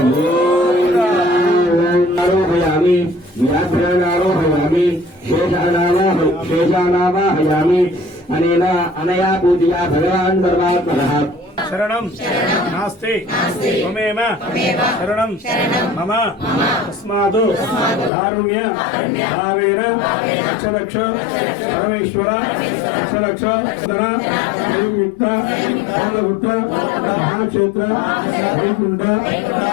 गोविन्दा आरोहयामि व्याघ्रानारोहयामि शेषानावाहयामि अनया पूजया भगवान् सर्वात्मनः शरणं नास्ति त्वमेव शरणं मम तस्मात् कारुण्य भावेन रक्ष परमेश्वर रक्ष संयुक्त पालपुत्र महाक्षेत्र वैकुंठ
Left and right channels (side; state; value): right; drops out; at 18.1 s